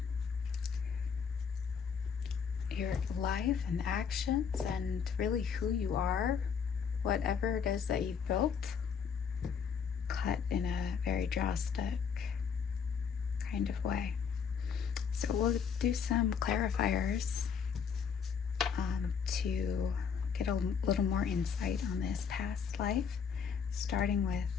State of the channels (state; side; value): quieter; right; 6.7 dB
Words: your life and actions and really who you are, whatever it is that you've built, cut in a very drastic kind of way. So we'll do some clarifiers to get a little more insight on this past life, starting